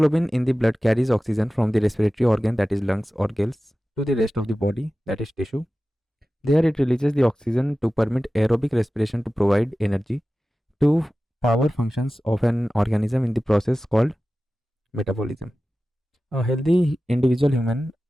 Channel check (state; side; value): normal; both; correlation 0.95